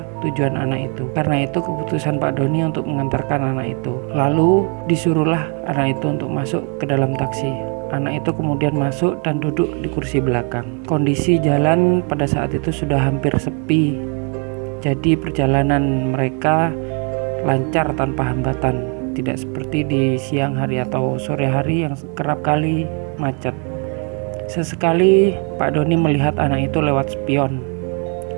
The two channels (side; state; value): left; quieter; 37.4 dB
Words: tujuan anak itu. Karena itu keputusan Pak Doni untuk mengantarkan anak itu. Lalu disuruhlah anak itu untuk masuk ke dalam taksi. Anak itu kemudian masuk dan duduk di kursi belakang. Kondisi jalan pada saat itu sudah hampir sepi. Jadi perjalanan mereka lancar tanpa hambatan. Tidak seperti di siang hari atau sore hari yang kerap kali macet. Sesekali Pak Doni melihat anak itu lewat spion,